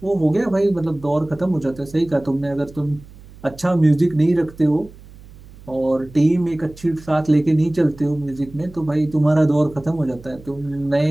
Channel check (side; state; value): right; noise; hum, 21 dB below the sound